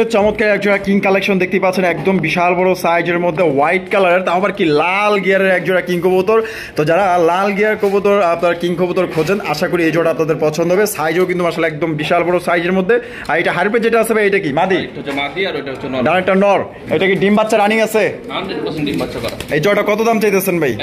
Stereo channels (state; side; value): identical; both; correlation 1.00